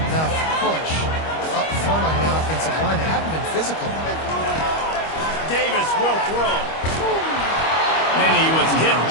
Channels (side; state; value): right; late; 25 ms